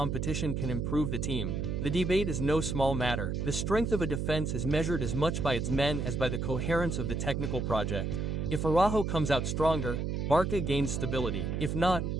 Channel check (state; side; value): noise; right; hum, 1 dB below the sound